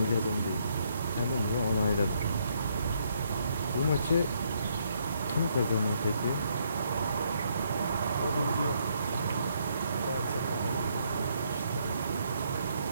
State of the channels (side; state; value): both; inverted; correlation -0.72